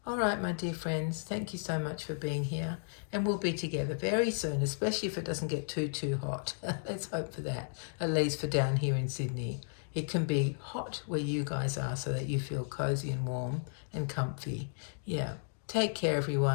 All right, my dear friends, thank you so much for being here. And we'll be together very soon, especially if it doesn't get too hot. Let's hope for that, at least for down here in Sydney. It can be hot where you guys are so that you feel cozy and warm and comfy. Yeah. Take care,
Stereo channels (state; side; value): silent; right; digital silence